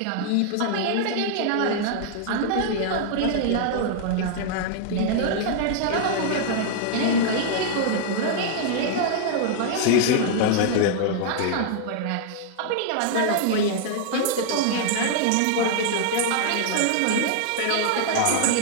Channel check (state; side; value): different; both; correlation 0.00